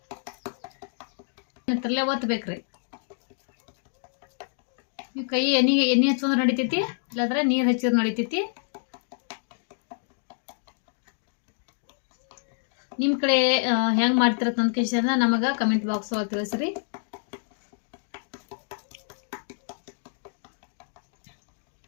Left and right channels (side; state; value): right; silent; digital silence